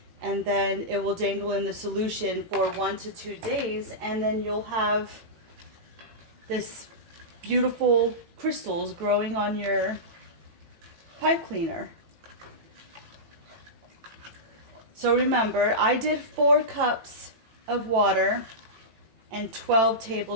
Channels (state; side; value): late; left; 18 ms